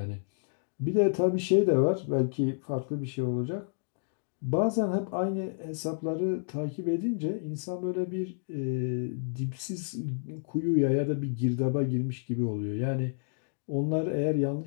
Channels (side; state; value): right; silent; digital silence